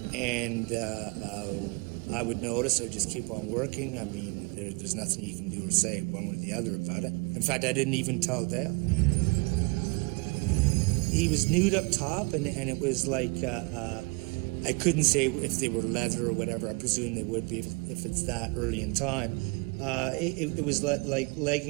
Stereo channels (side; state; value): left; quieter; 29.7 dB